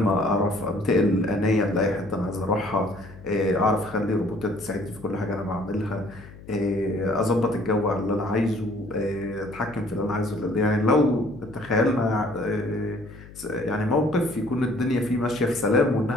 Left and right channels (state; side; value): noise; left; hum, 18 dB below the sound